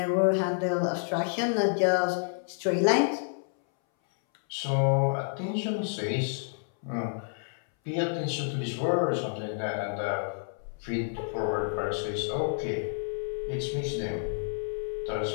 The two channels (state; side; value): silent; right; 58 dB below the other